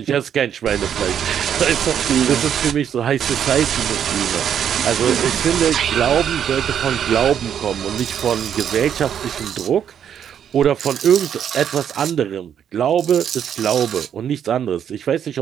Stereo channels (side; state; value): left; quieter; 8.9 dB